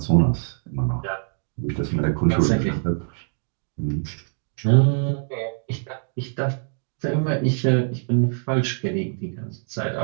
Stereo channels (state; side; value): silent; left; 63 dB below the other